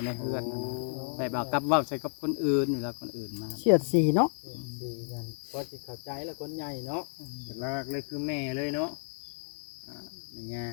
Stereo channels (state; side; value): silent; right; digital silence